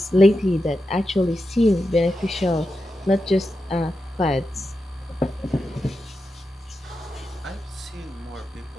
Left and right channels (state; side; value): normal; both; correlation 0.89